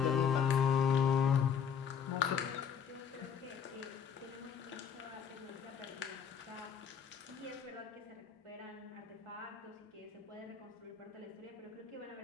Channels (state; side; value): quieter; right; 7.4 dB